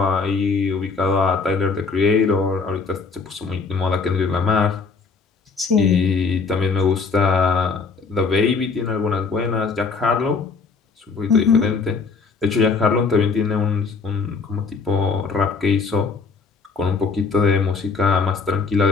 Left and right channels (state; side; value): quieter; right; 4.7 dB